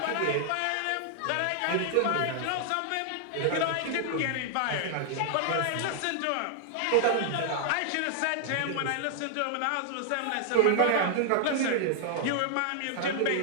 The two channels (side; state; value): both; different; correlation 0.00